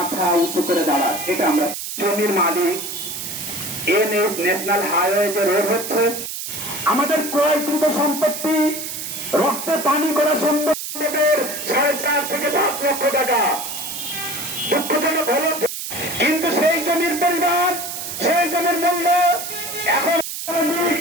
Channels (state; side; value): noise; right; hiss, 6 dB below the sound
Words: উঁচু করে দাঁড়ায়। এটা আমরা জমির মালিক এনএস ন্যাশনাল হাইওয়ে যে রোড হচ্ছে, আমাদের ক্রয়কৃত সম্পত্তি রক্তে পানি করা সম্পত্তির 4.5 থেকে 10 লক্ষ টাকা। দুঃখজনক হলো কিন্তু সেই জমির পরিমাণ, সেই জমির মূল্য এখন